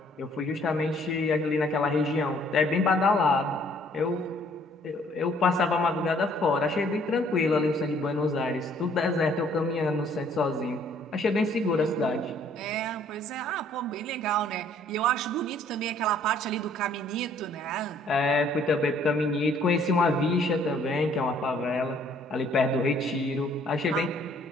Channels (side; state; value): both; normal; correlation 0.61